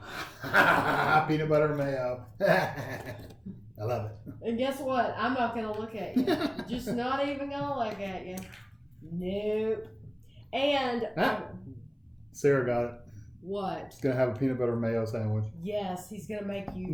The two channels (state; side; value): identical; both; correlation 1.00